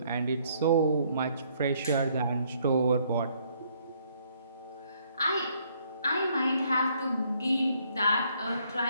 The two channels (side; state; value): both; inverted; correlation -0.67